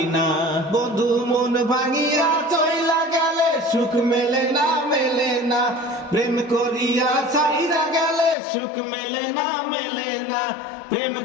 না। বন্ধু মন ভাঙিয়া চইলা গেলে সুখ মেলে না, মেলে না। প্রেম করিয়া ছাইরা গেলে সুখ মেলে না, মেলে না। প্রেম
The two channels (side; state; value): right; drops out; at 8.3 s